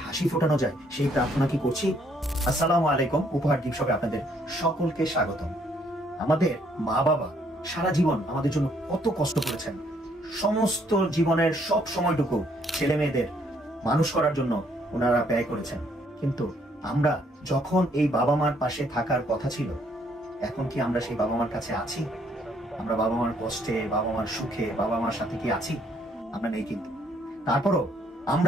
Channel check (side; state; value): both; normal; correlation 0.67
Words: হাসি ফোটানো যায় সেই প্রার্থনা কি করছি? আসসালামু আলাইকুম, উপহার দিবসে আপনাদের সকলকে স্বাগতম। আমাদের মা বাবা সারা জীবন আমাদের জন্য কত কষ্ট করেছেন, সমস্ত জীবনের সব সময়টুকু ছেলে মেয়েদের মানুষ করার জন্য ওনারা ব্যয় করেছেন। কিন্তু আমরা যখন এই বাবা মার পাশে থাকার কথা ছিল, এখন কি আমরা সেই বাবা মার কাছে আছি? আমরা বাবা মার কষ্টে, বাবা মার সুখে, বাবা মার সাথে কি আছি? আমরা নেই। কিন্তু তারপরও